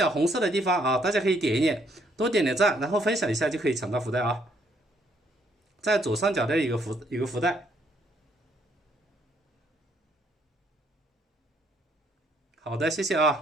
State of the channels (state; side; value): normal; both; correlation 0.69